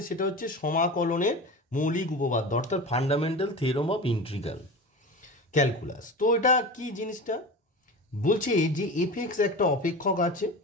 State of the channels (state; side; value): normal; both; correlation 0.30